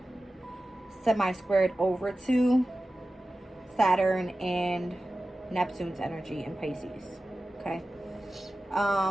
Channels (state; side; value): normal; both; correlation 0.95